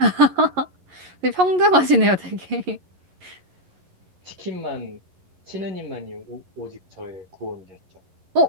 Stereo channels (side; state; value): left; late; 11 ms